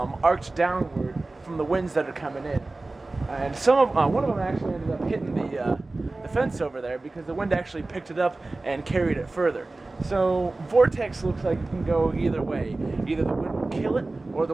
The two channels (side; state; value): left; quieter; 3.1 dB